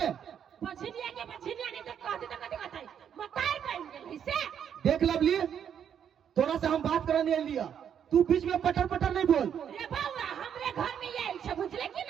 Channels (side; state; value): left; quieter; 8.5 dB